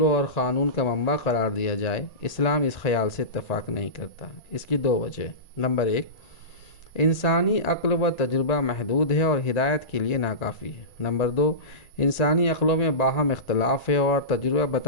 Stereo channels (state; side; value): late; right; 1.9 ms